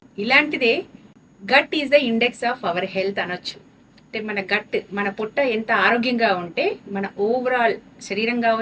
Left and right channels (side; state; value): both; identical; correlation 1.00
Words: ఇలాంటిదే gut is the index of our health అనొచ్చు. అంటే మన గట్, మన పొట్ట ఎంత ఆరోగ్యంగా ఉంటే మన ఓవరాల్ శరీరం